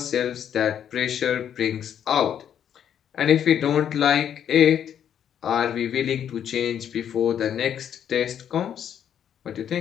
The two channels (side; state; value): right; quieter; 9.2 dB